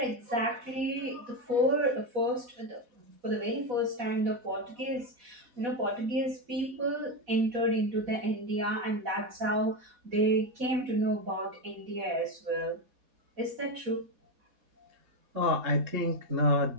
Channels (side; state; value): left; late; 4.1 ms